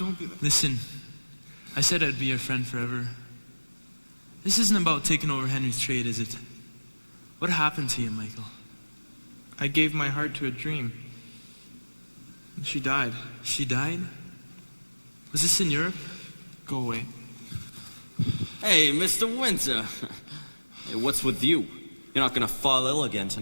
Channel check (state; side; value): inverted; both; correlation -1.00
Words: be... Listen, I said I'd be your friend forever. This isn't about taking over Henry's trade, is it? What happened to you, Michael? I gave my heart to a dream. She died. She died? Was this in Europe? Go away. Hey, Mr. Winter. Hey, what's with you? You're not gonna fall ill again